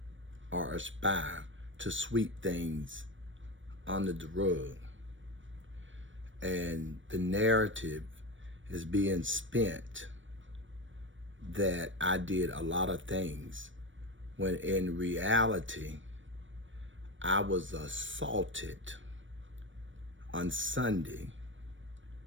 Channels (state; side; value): late; left; 0.56 ms